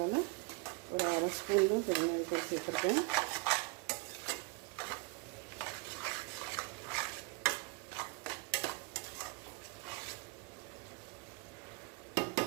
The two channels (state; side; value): quieter; left; 28.8 dB